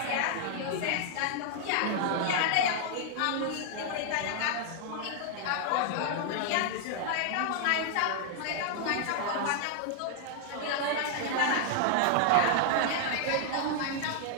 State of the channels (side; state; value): both; different; correlation 0.00